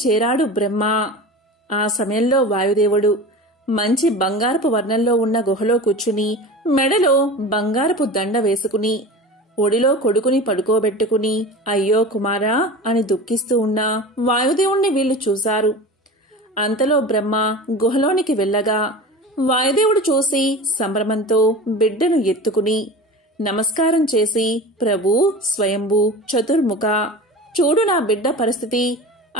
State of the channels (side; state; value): both; normal; correlation 0.33